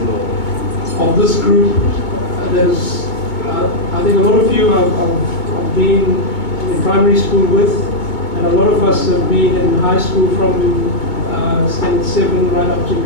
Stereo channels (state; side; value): late; right; 2.2 ms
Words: this group. There's, I think a lot of you I've been in primary school with, and a lot of us have been in high school from standard 7 right up to